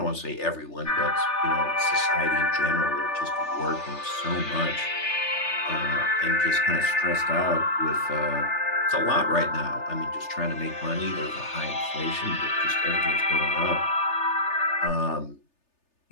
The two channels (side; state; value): right; late; 3.3 ms